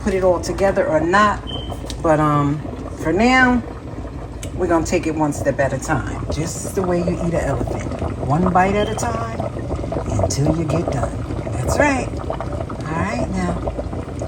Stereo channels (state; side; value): identical; both; correlation 1.00